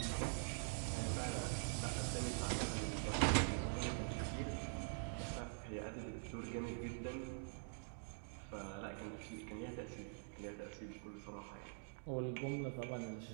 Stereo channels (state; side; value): silent; left; digital silence